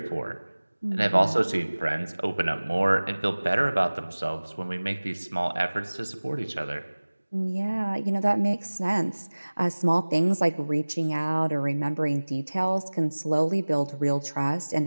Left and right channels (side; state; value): both; inverted; correlation -1.00